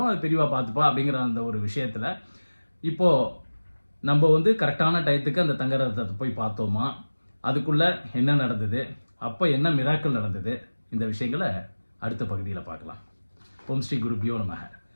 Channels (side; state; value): both; inverted; correlation -1.00